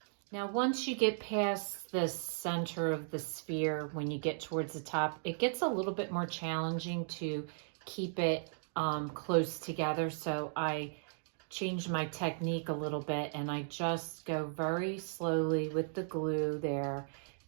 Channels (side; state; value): left; silent; digital silence